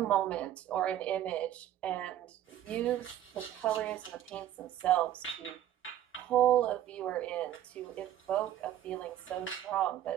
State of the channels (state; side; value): quieter; left; 12.0 dB